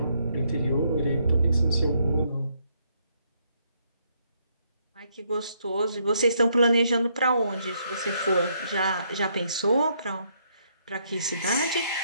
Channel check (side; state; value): both; inverted; correlation -0.72